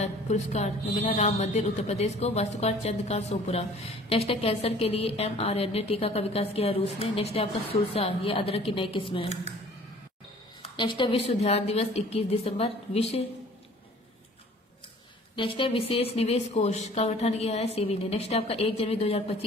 पुरस्कार मिला राम मंदिर उत्तर प्रदेश को, वास्तुकार चंद्रकांत सोपुरा। नेक्स्ट है कैंसर के लिए mRNA टीका का विकास किया है रूस ने। नेक्स्ट है आपका सुरसा, ये अदरक की नई किस्म है। नेक्स्ट है विश्व ध्यान दिवस 21 दिसंबर। नेक्स्ट है विशेष निवेश कोष का गठन किया है सेबी ने। नेक्स्ट है आपका 1 जनवरी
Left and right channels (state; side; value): normal; both; correlation 0.51